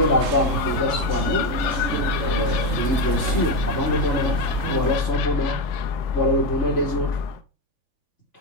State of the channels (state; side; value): late; right; 3.2 ms